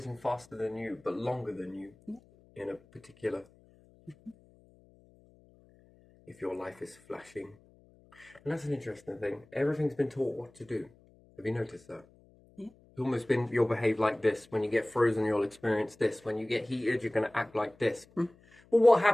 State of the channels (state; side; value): noise; left; hum, 28 dB below the sound